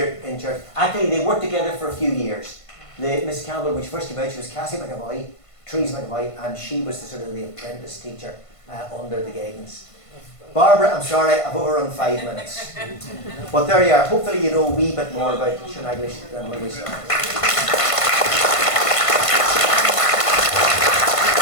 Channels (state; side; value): late; right; 1.5 ms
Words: in church. Actually, they worked together for a few years. Mrs. Campbell, when she first came out, she was Cassie McAvoy, Therese McAvoy, and she was the sort of the apprentice teacher under the guidance. Barbara, I'm sorry, I've overrun 5 minutes. But there you are. Hopefully you know a wee bit more about Shaneglish than when we started.